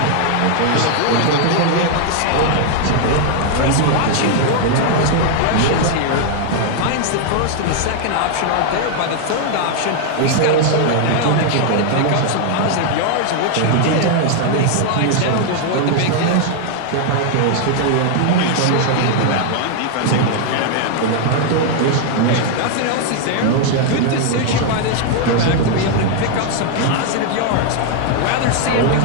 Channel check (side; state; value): both; different; correlation 0.00